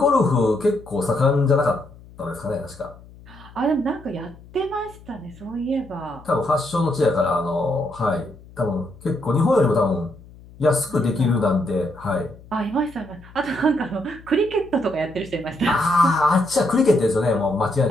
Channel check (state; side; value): noise; left; hum, 21 dB below the sound